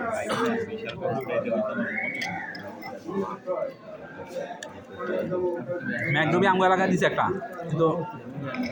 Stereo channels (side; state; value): both; identical; correlation 1.00